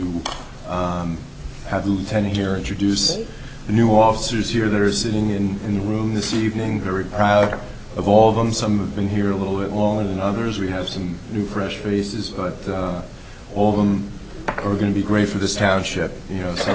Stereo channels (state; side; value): identical; both; correlation 1.00